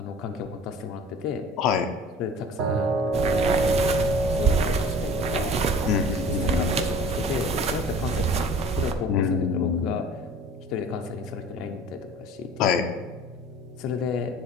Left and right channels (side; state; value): both; normal; correlation 0.44